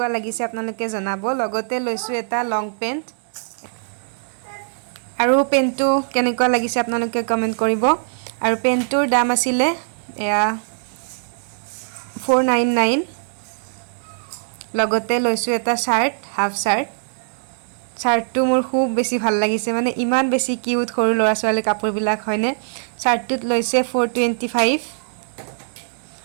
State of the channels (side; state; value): left; silent; 65 dB below the other